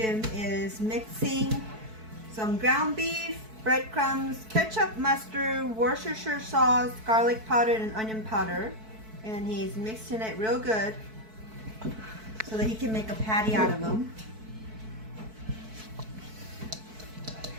is mixing some ground beef, breadcrumbs, ketchup, mustard, Worcestershire sauce, garlic powder, and onion powder. And he's mixing it real good so that he can make a patty out of them.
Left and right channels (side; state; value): left; late; 4.6 ms